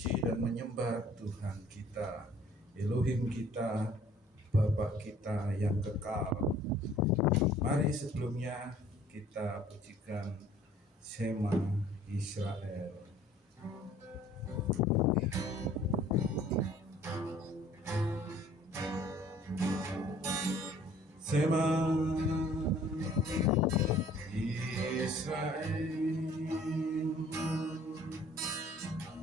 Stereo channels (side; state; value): both; normal; correlation 0.54